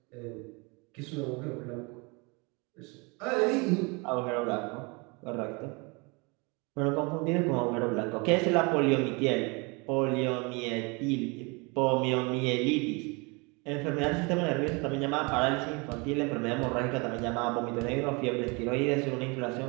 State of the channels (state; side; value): quieter; left; 29.1 dB